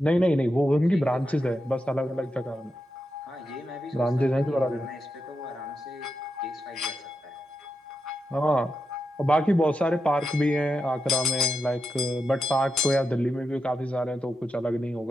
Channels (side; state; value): both; normal; correlation 0.87